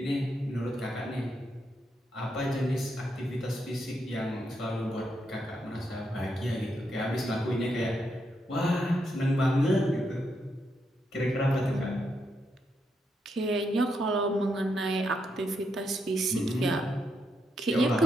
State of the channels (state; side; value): normal; both; correlation 0.81